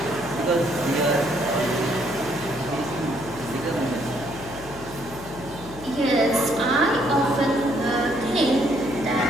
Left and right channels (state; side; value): noise; left; hum, 15 dB below the sound